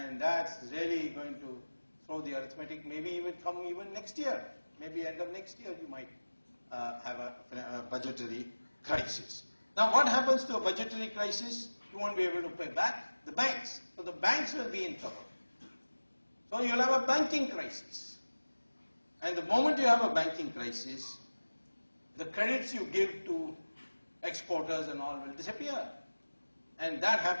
that's really going to throw the arithmetic, maybe even come even next year. Maybe end of next year you might have a budgetary crisis. Now what happens to a budgetary crisis? You won't be able to pay back the banks. So the banks will be in trouble. So you'll have a banking crisis. And the moment you have a banking crisis, the credits you give to exporters and all will disappear. And that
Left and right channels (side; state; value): both; inverted; correlation -1.00